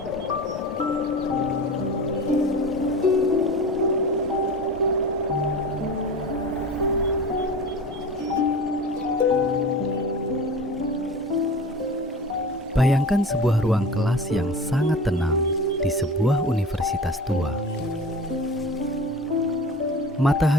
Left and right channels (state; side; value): normal; both; correlation 0.35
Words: Bayangkan sebuah ruang kelas yang sangat tenang di sebuah universitas tua.